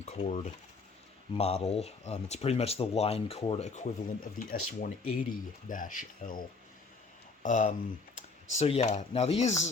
cord model. It's pretty much the line cord equivalent of the S-180-L. So yeah, now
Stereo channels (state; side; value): quieter; right; 4.2 dB